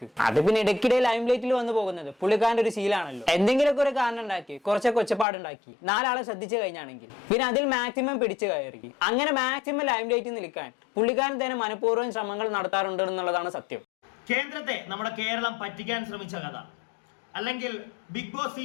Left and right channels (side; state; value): right; drops out; at 5.2 s